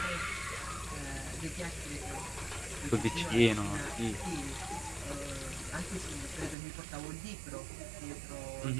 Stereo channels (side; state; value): left; drops out; at 6.6 s